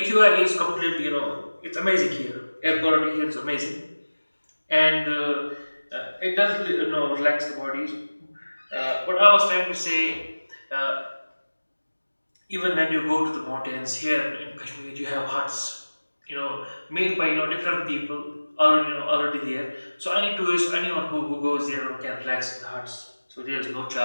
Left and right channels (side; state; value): both; inverted; correlation -1.00